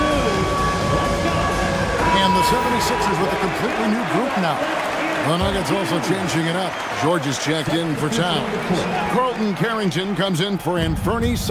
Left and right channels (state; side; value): identical; both; correlation 1.00